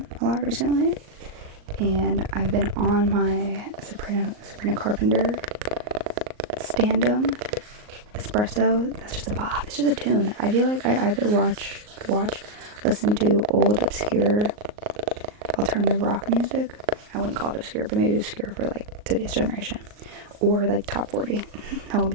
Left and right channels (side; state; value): left; late; 38 ms